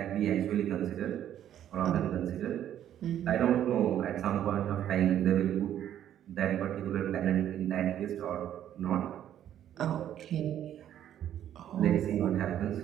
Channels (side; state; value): left; quieter; 10.9 dB